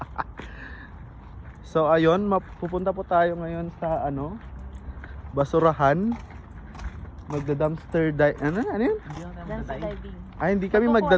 So ayun, pupunta po tayo ngayon sa basurahan. Magda-dumpster dive. Ano yun? Dumpster diving. Ay, hindi kami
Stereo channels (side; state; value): both; identical; correlation 1.00